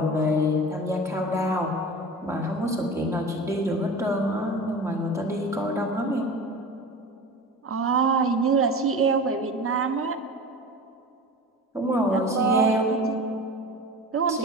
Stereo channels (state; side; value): normal; both; correlation 0.34